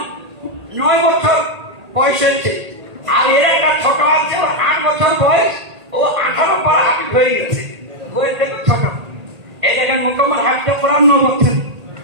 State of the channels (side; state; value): left; late; 1.8 ms